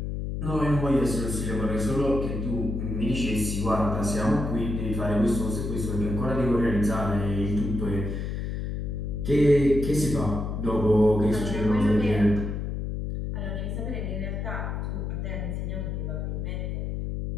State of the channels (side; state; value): left; noise; hum, 3 dB below the sound